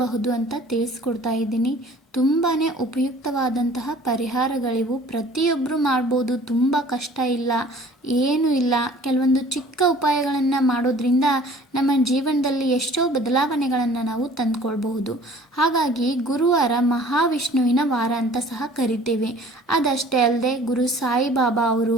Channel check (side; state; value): both; normal; correlation 0.50